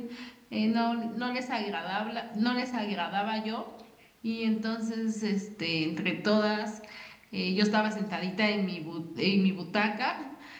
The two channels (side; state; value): both; identical; correlation 1.00